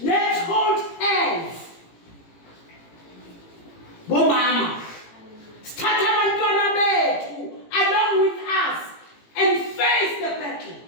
Let's hold hands. Bomama. Start abantwana bethu along with us and face the battle.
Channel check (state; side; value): late; right; 18 ms